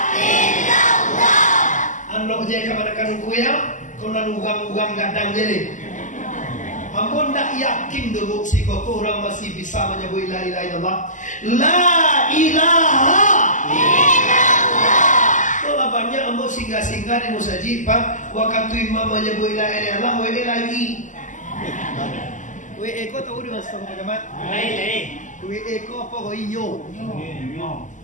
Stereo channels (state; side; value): late; right; 0.37 ms